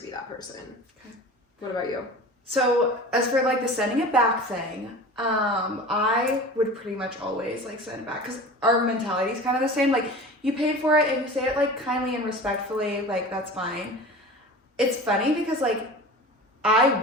that person. Okay. What about you? So as for like the sending it back thing, I would pretty much always like send it back, because our mentality is kind of the same. Like, you paid for it and you say it like kindly and respectfully, like, that's fine. It's funny because like I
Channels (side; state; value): both; normal; correlation 0.37